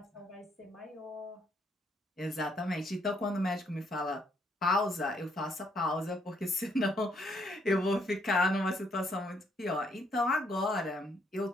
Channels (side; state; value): both; normal; correlation 0.71